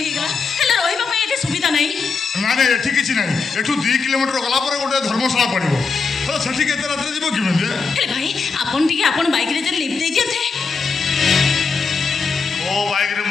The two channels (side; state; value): right; quieter; 4.8 dB